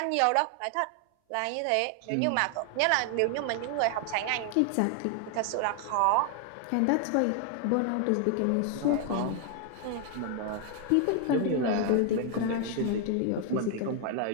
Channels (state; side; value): different; both; correlation 0.00